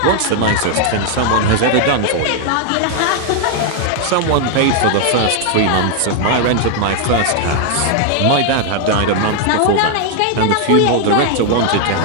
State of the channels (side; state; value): both; different; correlation 0.00